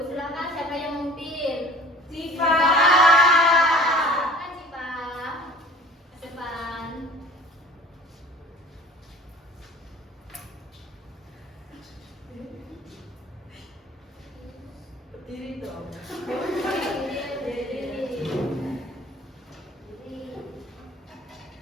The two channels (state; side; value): normal; both; correlation 0.46